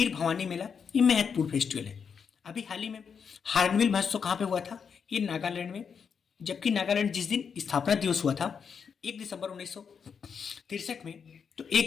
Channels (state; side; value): quieter; right; 6.5 dB